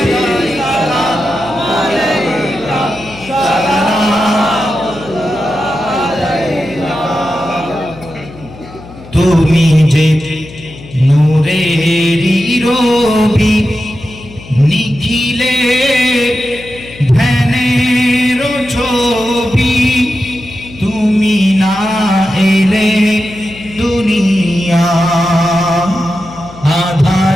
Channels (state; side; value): noise; left; hum, 18 dB below the sound